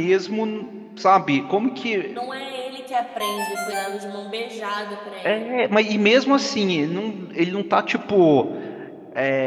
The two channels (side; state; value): both; identical; correlation 1.00